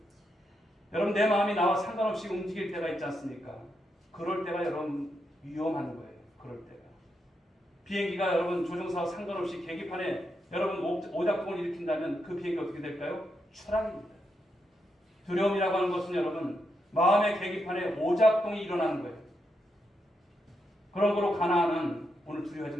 여러분 내 마음이 나와 상관없이 움직일 때가 있지 않습니까? 그럴 때가 여러분 위험한 거예요. 그럴 때가. 비행기가 여러분 조종사와 상관없이 계기판에 여러분 오작동을 일으킨다면 그 비행기 어떻게 될까요? 추락입니다. 두려움이라고 하는 것은 여러분 마음의 계기판에 오작동이 일어나는 거예요. 그런 거로 가나안은 오늘 두려워하지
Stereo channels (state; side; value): normal; both; correlation 0.83